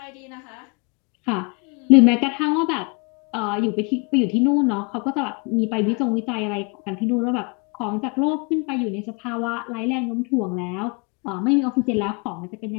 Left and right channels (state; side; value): quieter; right; 32.8 dB